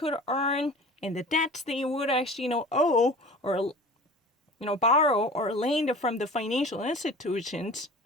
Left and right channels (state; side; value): normal; both; correlation 0.40